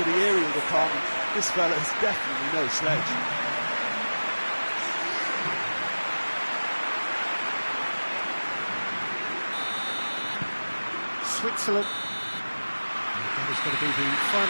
the aerial department, this fella is definitely no slouch. Switzerland. That is going to be the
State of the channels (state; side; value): inverted; both; correlation -1.00